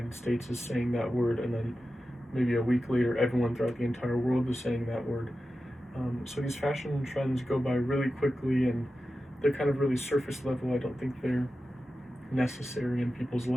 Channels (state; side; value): normal; both; correlation 0.92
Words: States is saying that word, and then maybe a week later everyone throughout the entire world is saying that word. So these fashion trends go by really quickly, and they're kind of really surface level. I don't think they're necessary in people's